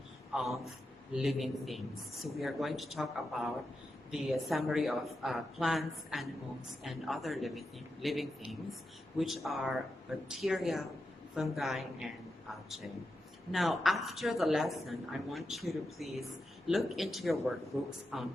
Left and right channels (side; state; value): both; normal; correlation 0.88